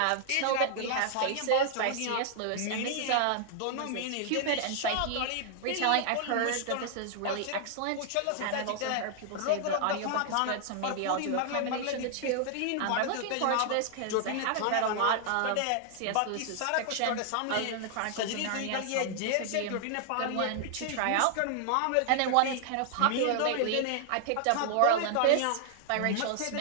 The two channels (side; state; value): both; different; correlation 0.00